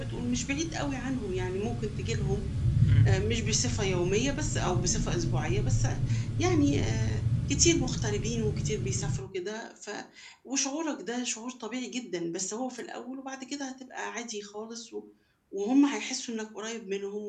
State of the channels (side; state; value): both; identical; correlation 1.00